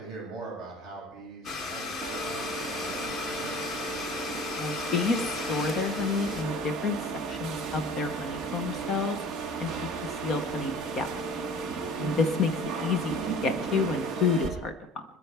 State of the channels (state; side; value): normal; both; correlation 0.45